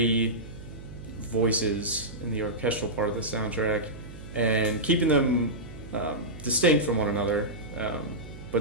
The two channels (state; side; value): noise; right; hum, 14 dB below the sound